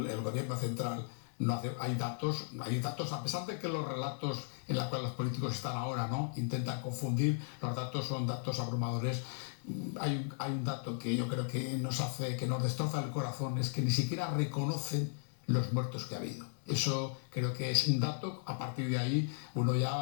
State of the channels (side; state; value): right; silent; digital silence